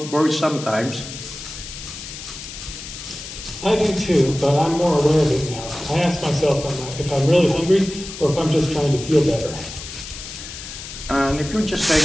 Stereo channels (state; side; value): noise; left; hiss, 11 dB below the sound